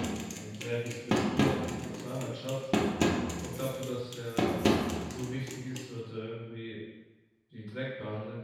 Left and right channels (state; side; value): identical; both; correlation 1.00